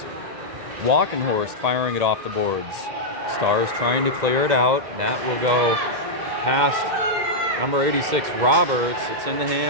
Walkenhorst firing it off the boards. Stars trying to clear it out. That will go past number 86, Roberts. It's in the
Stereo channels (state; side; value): late; left; 2.1 ms